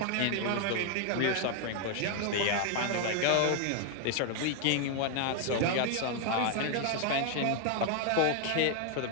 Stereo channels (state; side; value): different; both; correlation 0.01